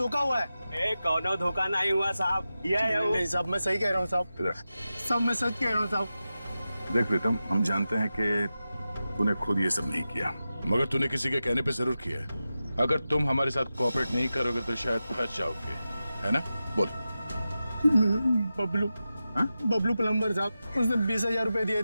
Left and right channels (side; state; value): both; inverted; correlation -0.93